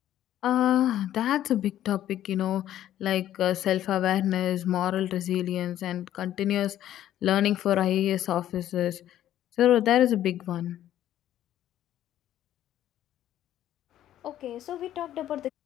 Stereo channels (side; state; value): right; quieter; 12.1 dB